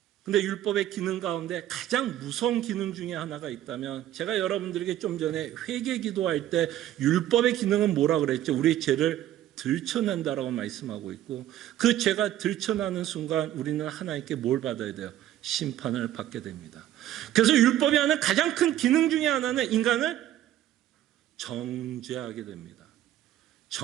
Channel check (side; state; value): left; quieter; 12.7 dB